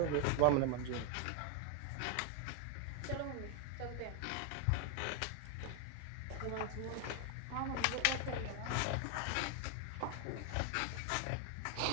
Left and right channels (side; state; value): both; different; correlation 0.01